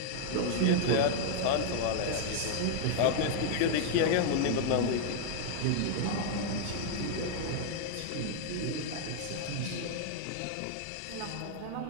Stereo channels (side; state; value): both; different; correlation 0.00